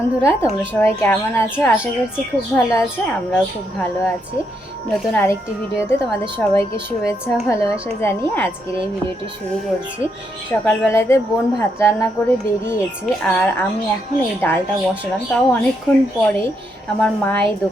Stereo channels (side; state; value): both; normal; correlation 0.78